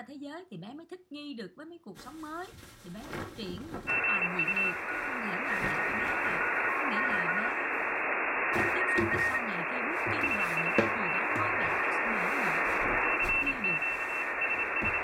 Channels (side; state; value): both; identical; correlation 1.00